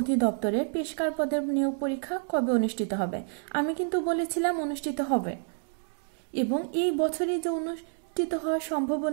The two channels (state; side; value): silent; left; 59 dB below the other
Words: পেশকার পদের নিয়োগ পরীক্ষা কবে অনুষ্ঠিত হবে। আমি কিন্তু বলেছিলাম অনুষ্ঠিত হবে এবং এই বছরই যে অনুষ্ঠিত হওয়ার